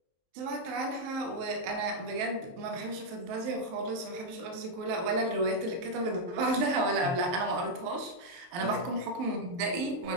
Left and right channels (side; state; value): left; late; 23 ms